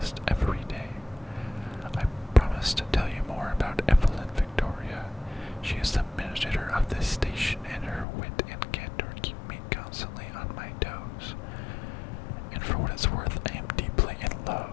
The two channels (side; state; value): right; drops out; at 8.1 s